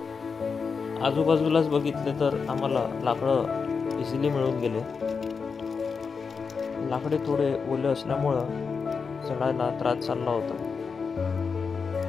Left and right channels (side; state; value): right; quieter; 5.4 dB